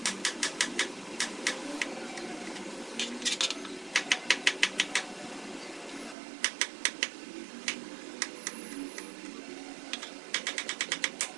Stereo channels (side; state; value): left; drops out; at 6.2 s